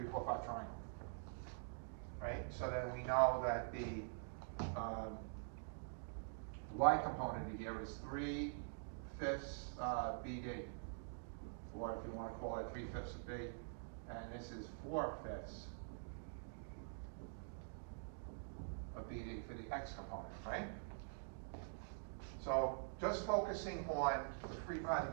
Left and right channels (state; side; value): silent; left; digital silence